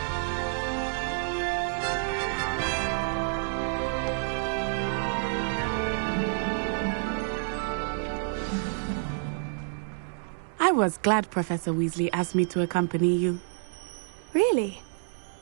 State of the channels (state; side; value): silent; left; digital silence